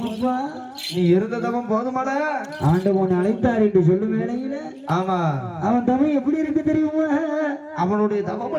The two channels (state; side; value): identical; both; correlation 1.00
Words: நீ இருந்ததவன் போதுமாடா. ஆண்டவன் அழைத்தார் என்று சொல்லும் வேளையில ஆமா அவன் தவம் எப்படி இருக்கு தெரியுமா? அவனுடைய